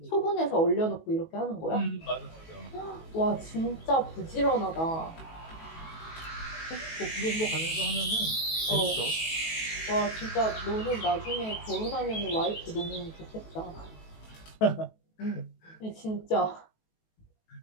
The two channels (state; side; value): late; right; 18 ms